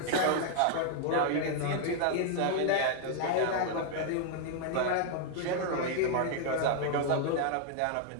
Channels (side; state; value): both; different; correlation 0.00